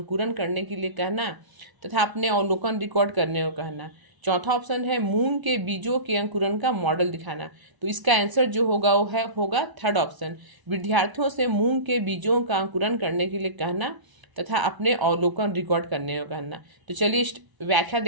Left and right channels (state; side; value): late; left; 1.0 ms